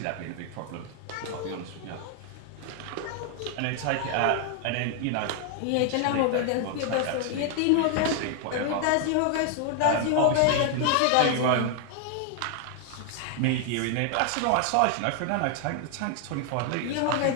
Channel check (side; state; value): both; different; correlation 0.00